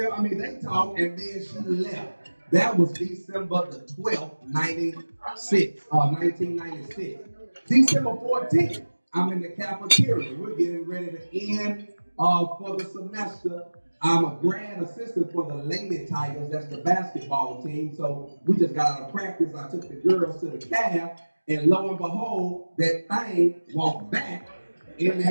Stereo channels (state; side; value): inverted; both; correlation -1.00